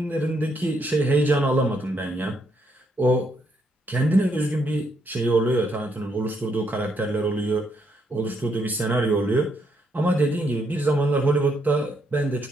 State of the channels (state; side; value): normal; both; correlation 0.75